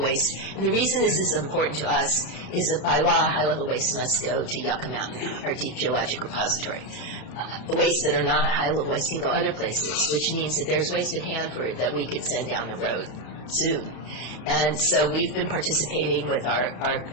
And the reason this is important to us is that by law, high-level waste must go to Yucca Mountain, our deep geologic repository. Waste that are not high-level waste can go other places, which means that there's waste at Hanford that we could send down the road soon. And so we've been participating with our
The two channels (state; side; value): late; right; 33 ms